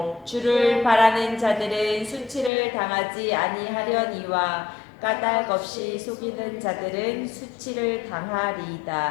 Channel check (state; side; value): drops out; right; at 2.5 s